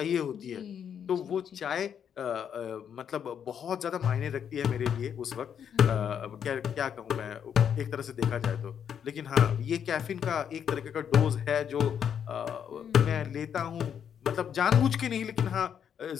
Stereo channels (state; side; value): quieter; right; 8.3 dB